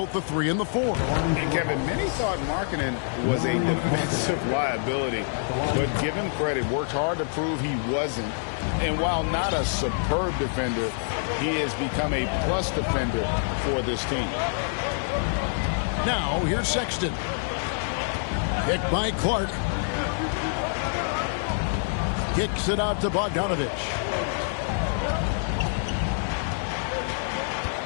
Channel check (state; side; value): silent; right; 61 dB below the other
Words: the 3 and the 4. And Kevin, many thought Markkanen was a defensive liability, but give him credit, worked hard to prove he wasn't. And while not a superb defender, he has become a plus defender for this team. Now, here's Sexton. Picked by Clark. Kicks it out to Bogdanovich.